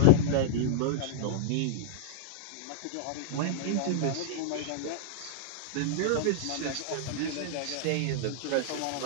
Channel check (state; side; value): different; both; correlation -0.01